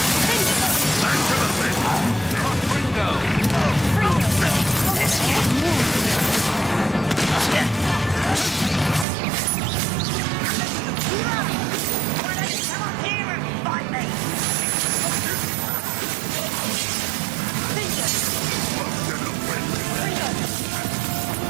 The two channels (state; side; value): drops out; left; at 9.1 s